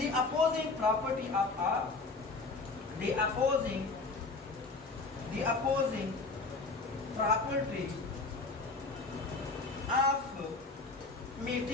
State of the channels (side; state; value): right; quieter; 3.8 dB